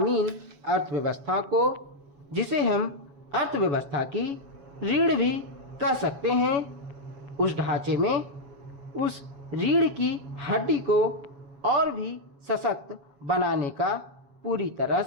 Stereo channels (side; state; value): left; late; 7.1 ms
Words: अर्थव्यवस्था को, जिसे हम अर्थव्यवस्था की रीढ़ भी कह सकते हैं, उस ढांचे में उस रीढ़ की हड्डी को और भी सशक्त बनाने का पूरी तरह